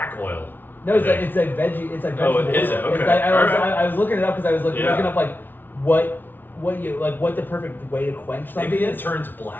oil. No, it's like veggie. It's like vegetable. Oh, is it? Okay. I was looking it up because I was looking up like what the perfect way to quench something. Maybe it turns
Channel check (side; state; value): right; late; 0.092 ms